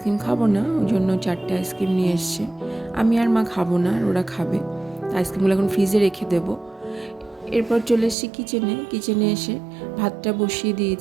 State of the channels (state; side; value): drops out; left; at 8.2 s